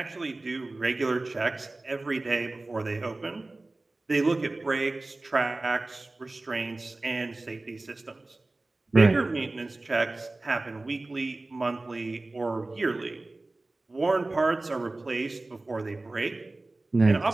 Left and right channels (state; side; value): quieter; left; 3.0 dB